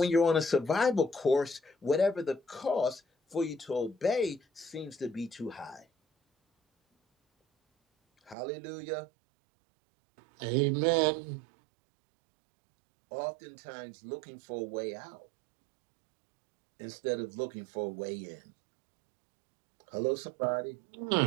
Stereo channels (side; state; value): left; drops out; at 8.3 s